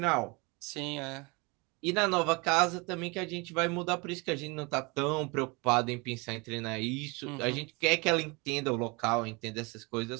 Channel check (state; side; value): quieter; left; 27.6 dB